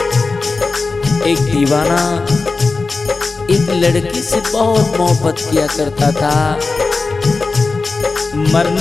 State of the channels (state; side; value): quieter; right; 3.9 dB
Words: एक दीवाना एक लड़की से बहुत मोहब्बत किया करता था।